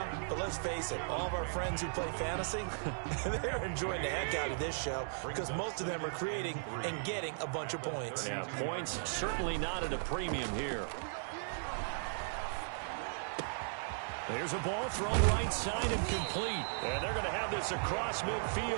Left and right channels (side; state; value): left; silent; digital silence